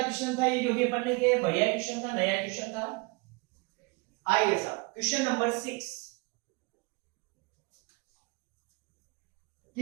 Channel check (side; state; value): left; quieter; 27.8 dB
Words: क्वेश्चन था ये, जो भी अपन ने किया, बढ़िया क्वेश्चन था, नया क्वेश्चन था। आइए साहब क्वेश्चन नंबर 6